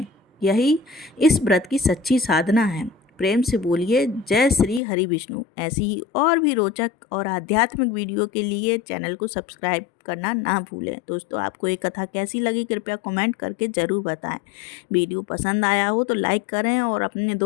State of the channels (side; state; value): right; drops out; at 4.8 s